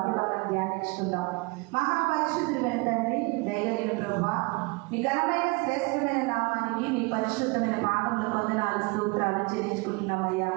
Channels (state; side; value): quieter; left; 28.0 dB